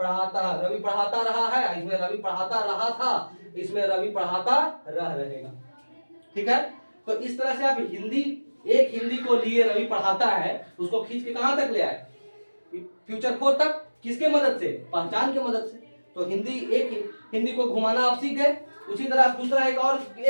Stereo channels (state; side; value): inverted; both; correlation -1.00